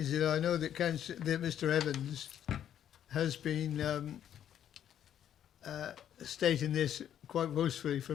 that I know that Mr. Evans has been stating this quite boastfully for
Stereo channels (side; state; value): right; quieter; 10.1 dB